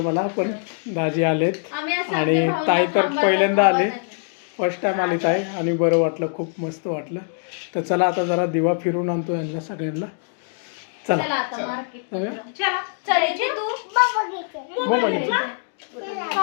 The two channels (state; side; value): silent; right; 64 dB below the other